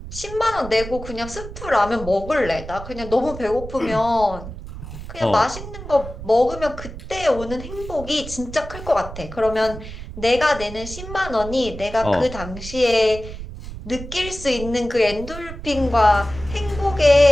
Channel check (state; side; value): noise; right; rumble, 11 dB below the sound